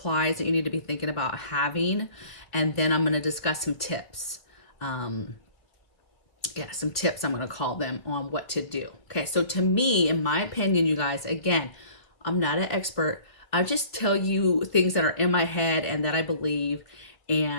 that you need to be thinking about having. And then I'm going to discuss some tips. Some tips, I'm going to call them, on what to do. Okay, so to me, in my opinion, you guys, again, I'm not an expert. I just tell you things that are in my head and that I believe,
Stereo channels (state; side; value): late; right; 1.8 ms